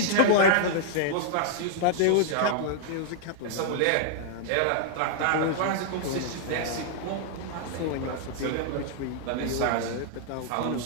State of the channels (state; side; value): different; both; correlation -0.01